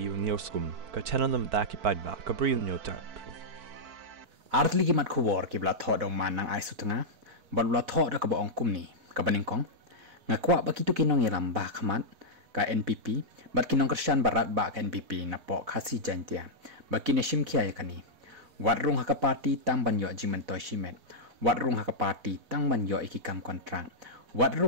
nioskum ka chananam daki padba ka bril nyotar. Artli gimat kubor kibla thod ong man nang ai sutanga balula thod ka ba ong kumni ka baningkong ngakwa ba kitu kinong yalam ba khamat ka NPP bat kinong Krisyan barat ba ka NPP na po khasi jantia ba kineshim khia yakani watrung haka party tang banyo jimentoy shimet watrung haka party tang banyo ikikam kontrang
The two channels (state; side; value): late; left; 4.1 ms